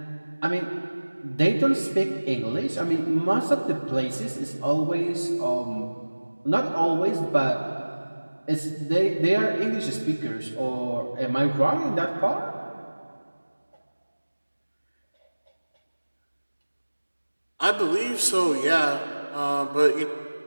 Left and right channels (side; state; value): both; inverted; correlation -1.00